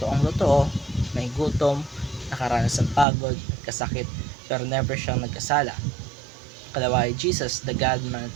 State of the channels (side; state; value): left; drops out; at 3.1 s